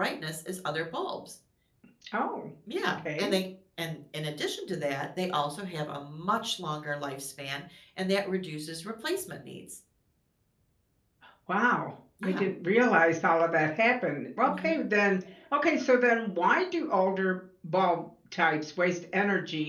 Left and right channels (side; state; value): both; identical; correlation 1.00